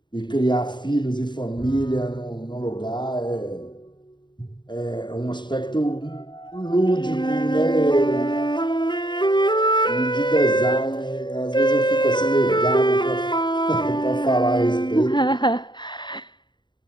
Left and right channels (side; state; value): right; late; 0.22 ms